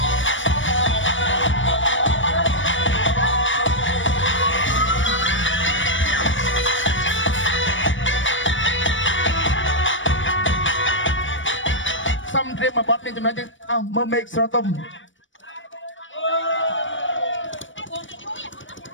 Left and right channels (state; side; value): late; right; 0.56 ms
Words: សំត្រៀមមួយបទនេះចំណុចនេះអោមើលមេឃស្រទុំ